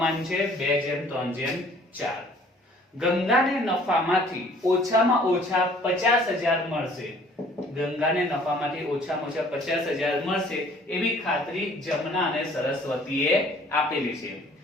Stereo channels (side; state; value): both; normal; correlation 0.55